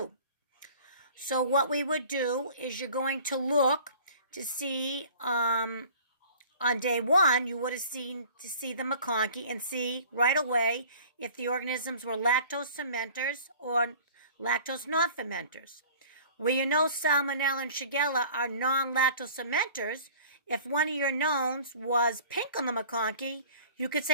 So what we would do is you're going to look to see on day one, you would have seen to see the McConkey and see right away if the organisms were lactose fermenters or lactose non-fermenters. Where you know Salmonella and Shigella are non-lactose fermenters, if one of your knowns was pink on the McConkey, you could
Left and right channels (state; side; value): inverted; both; correlation -0.47